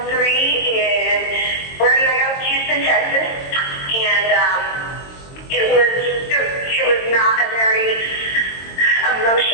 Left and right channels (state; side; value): late; right; 22 ms